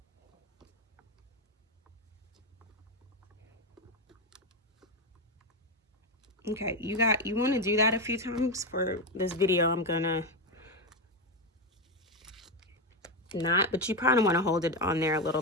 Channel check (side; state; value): both; normal; correlation 0.10